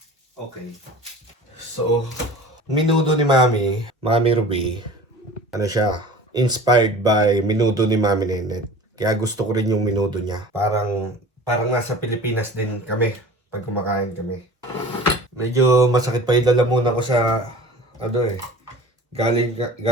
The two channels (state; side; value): normal; both; correlation 0.40